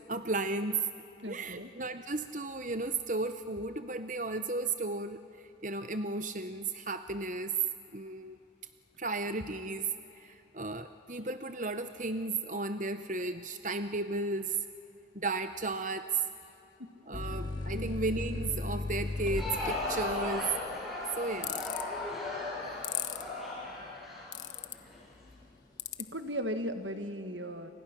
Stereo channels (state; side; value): normal; both; correlation 0.23